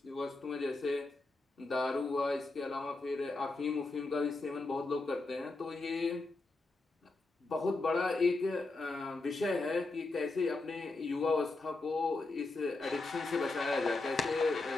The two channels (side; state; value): right; quieter; 3.3 dB